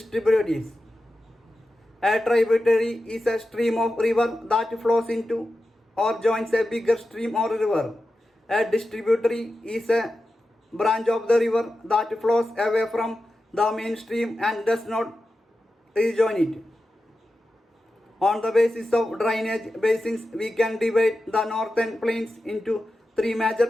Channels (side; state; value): both; normal; correlation 0.92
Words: A tributary is a stream of river that flows into or joins a bigger stream or river. A distributary is a branch of the river that flows away from the main stream and does not rejoin it. On the basis of drainage basins, we can divide the northern plains into 3